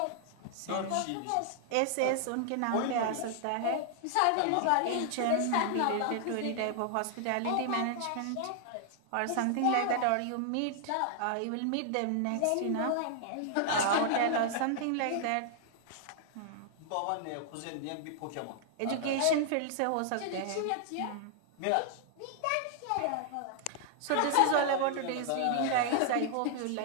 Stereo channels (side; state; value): both; different; correlation -0.01